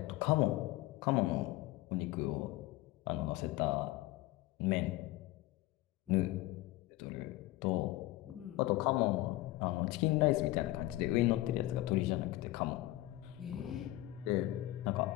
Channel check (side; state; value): right; quieter; 17.4 dB